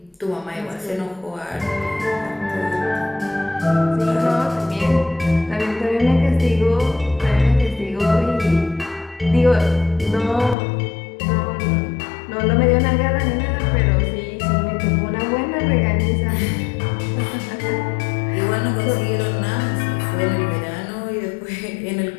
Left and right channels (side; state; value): right; drops out; at 10.6 s